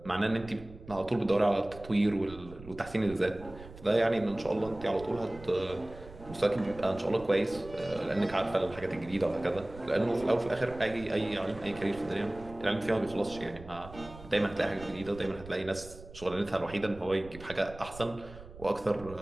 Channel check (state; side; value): noise; right; rumble, 17 dB below the sound